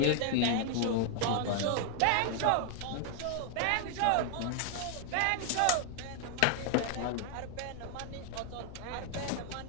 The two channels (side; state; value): both; different; correlation 0.00